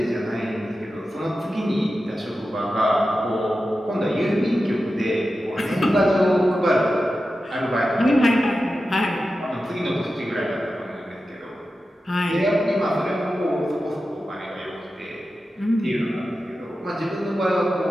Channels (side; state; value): both; normal; correlation 0.92